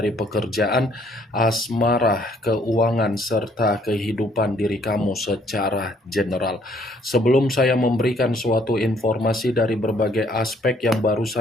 pekerjaan, asmara, keuangan, serta kehidupan diri kamu secara general. Sebelum saya memberikan suatu informasi dari berbagai aspek yang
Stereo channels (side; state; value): both; normal; correlation 0.65